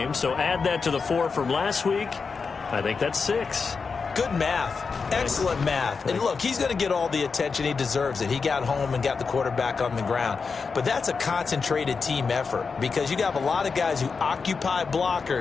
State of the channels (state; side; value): quieter; right; 5.0 dB